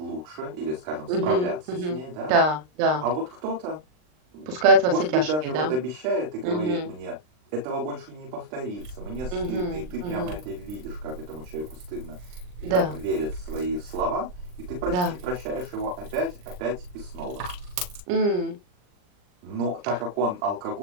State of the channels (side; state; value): left; late; 39 ms